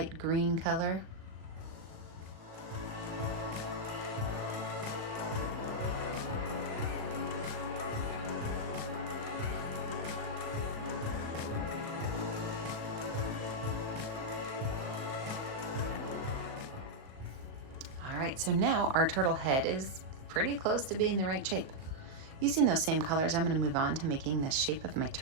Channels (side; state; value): left; late; 37 ms